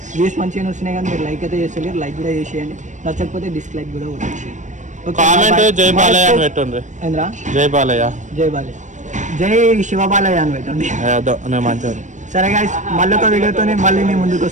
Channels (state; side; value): late; left; 0.35 ms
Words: వ్యూస్ మంచిగా వస్తున్నాయి కానీ మీరు లైక్ అయితే చేసలేరు లైక్ కూడా చేసేయండి నచ్చకపోతే డిస్లైక్ కూడా కొట్టేసేయండి కామెంట్ జై బాలయ్య అని పెట్టండి ఏంద్రా జై బాలయ్య జై బాలయ్య జై శివబాలయ్య అని పెట్టండి అదో నేను మంచిగా సరే గైస్ మళ్ళీ ఒక వీడియోతో మళ్ళీ నేను ముందుకు